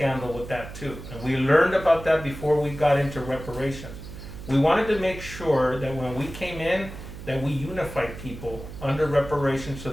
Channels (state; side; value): noise; right; hum, 12 dB below the sound